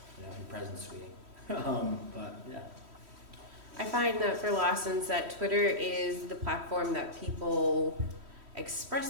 your president's tweeting. But yeah. I find that for Lawson's that Twitter is the platform that people express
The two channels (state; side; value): late; left; 3.1 ms